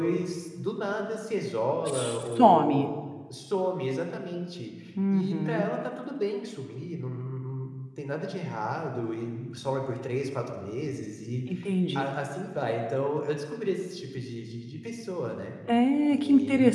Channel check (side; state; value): both; identical; correlation 1.00